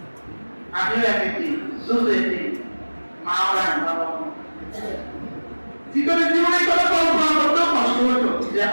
আমিও একটি দুধ এটি মা ওরা বাবা জীবনে জীবনে কোনো কল্পনা করতেও কষ্ট হতো যে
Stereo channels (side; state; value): both; inverted; correlation -1.00